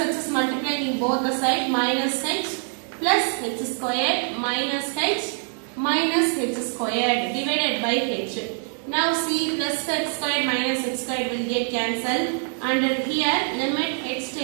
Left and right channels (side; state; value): left; silent; 56 dB below the other